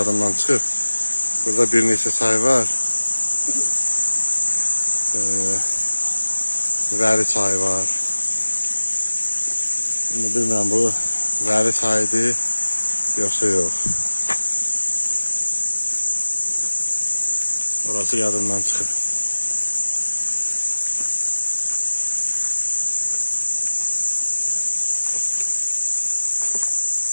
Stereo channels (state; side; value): inverted; both; correlation -1.00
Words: çıxıb. Burada bir neçə çay var. Vəli çayı var. Şimdi bilmirəm bu vəli çayıdır yoxsa yox. Orası yadımdan çıxıb.